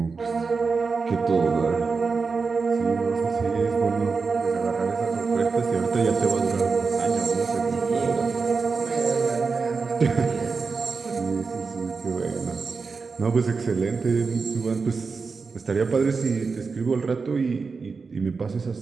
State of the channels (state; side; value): quieter; left; 4.7 dB